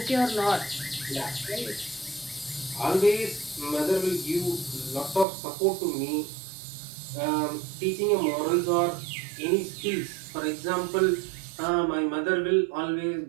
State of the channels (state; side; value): drops out; left; at 5.2 s